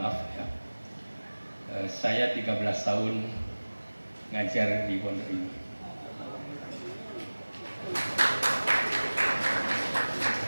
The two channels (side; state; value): both; inverted; correlation -1.00